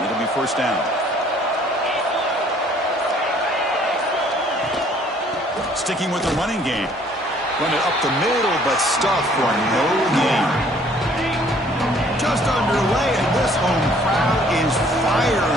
It'll be first down. Sticking with the running game. Run it up the middle, but stuffed for no gain. Just underway, and this home crowd is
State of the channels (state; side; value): normal; both; correlation 0.59